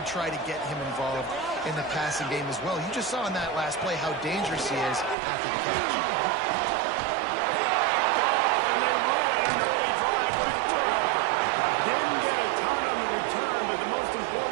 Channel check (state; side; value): drops out; left; at 5.2 s